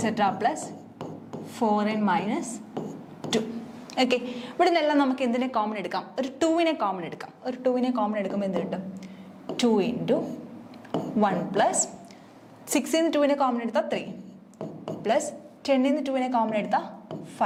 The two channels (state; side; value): identical; both; correlation 1.00